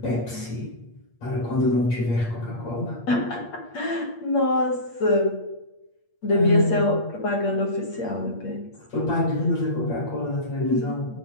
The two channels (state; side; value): late; right; 8.5 ms